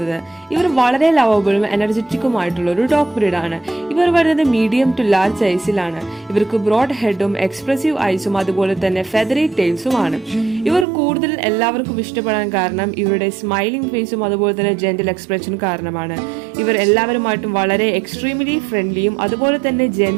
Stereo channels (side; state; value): left; drops out; at 10.9 s